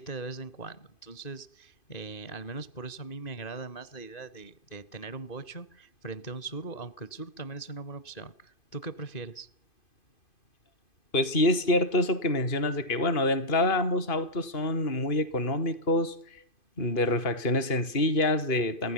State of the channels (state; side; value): late; right; 2.5 ms